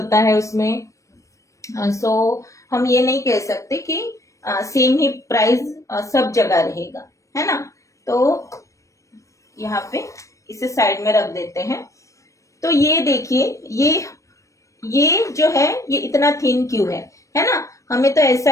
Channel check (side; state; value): right; late; 0.15 ms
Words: है उसमें। सो हम ये नहीं कह सकते कि सेम ही प्राइस सब जगह रहेगा, है ना। तो यहाँ पे इसे साइड में रख देते हैं। तो ये देखिए, ये जो है ये इतना थिन क्यों है ना। हमें तो ऐसा